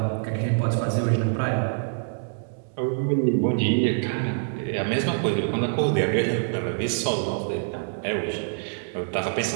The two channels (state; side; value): silent; left; 61 dB below the other